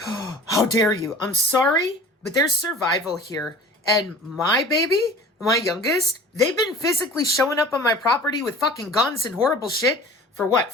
How dare you? I'm sorry, but there's survival here. And my baby, my youngest, they've been physically showing up on my property with fucking guns and horrible shit for what,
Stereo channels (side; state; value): both; normal; correlation 0.43